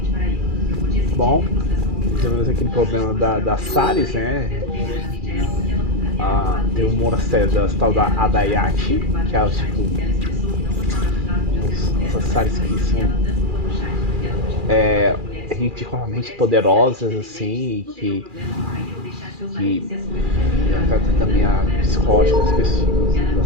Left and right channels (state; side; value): late; left; 2.4 ms